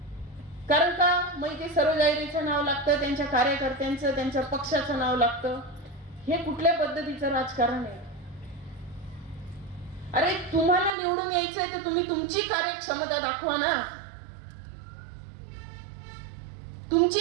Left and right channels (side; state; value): left; drops out; at 10.9 s